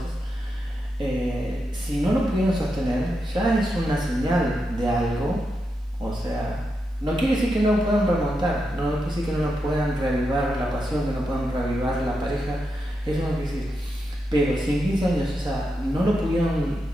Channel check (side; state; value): both; normal; correlation 0.86